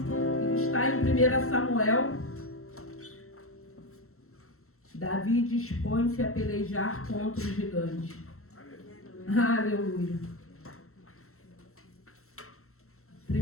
está em 1 Samuel. Davi dispõe-se a pelejar contra o gigante. Aleluia.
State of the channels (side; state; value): right; late; 0.63 ms